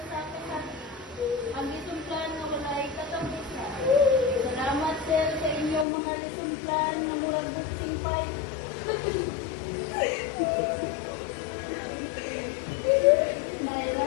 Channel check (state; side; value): drops out; right; at 5.9 s